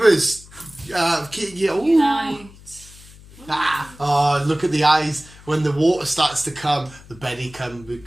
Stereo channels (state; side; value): noise; left; hum, 21 dB below the sound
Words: Ooh. Night. Oh, look at the eyes when the water starts to come. The Betty come with